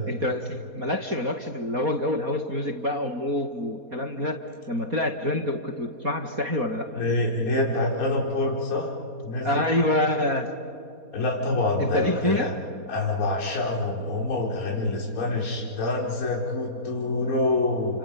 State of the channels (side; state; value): left; late; 4.2 ms